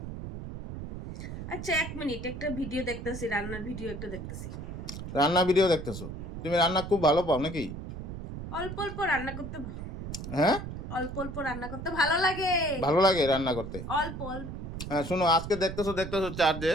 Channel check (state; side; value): noise; right; rumble, 8 dB below the sound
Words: আচ্ছা 1 মিনিট, একটা ভিডিও দেখতেছি, রান্নার ভিডিও একটা দেখতেছি। রান্না ভিডিও দেখতেছো? তুমি রান্না খুব ভালো পাও নাকি? অল্প অল্প রান্না করতে হ্যাঁ অল্প অল্প রান্না করতে ভালো লাগে। ভালো লাগে রান্না করতে? অল্প অল্প। হ্যাঁ শোনো, আজকে দেখতেছো চার্জে,